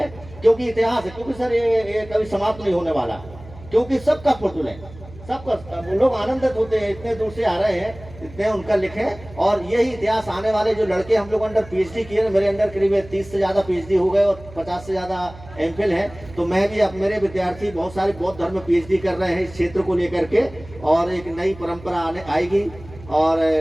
क्योंकि इतिहास है, क्योंकि सर ये कभी समाप्त नहीं होने वाला, क्योंकि सबका फुर्तुल है, सबका लोग आनंदित होते हैं, इतने दूर से आ रहे हैं, इतने उनका लिखे। और यही इतिहास आने वाले जो लड़के हम लोग अंडर पीएचडी किए, मेरे अंडर करीब 30 से ज़्यादा पीएचडी हो गए और 50 से ज़्यादा एमफिल हैं, तो मैं भी, अब मेरे विद्यार्थी बहुत सारे बौद्ध धर्म में पीएचडी कर रहे हैं इस क्षेत्र को लेकर के, और एक नई परंपरा आने आएगी और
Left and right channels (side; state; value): right; noise; hum, 18 dB below the sound